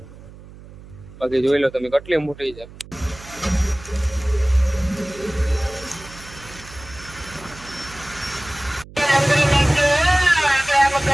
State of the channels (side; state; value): right; noise; hum, 18 dB below the sound